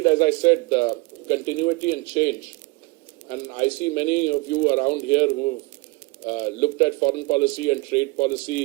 as I said, continuity and change. And I see many of you around here who've looked at foreign policy and trade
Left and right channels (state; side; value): quieter; left; 24.5 dB